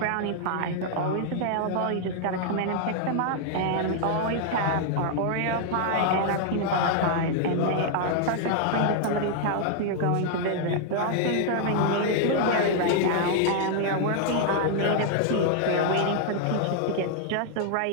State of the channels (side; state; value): both; different; correlation 0.00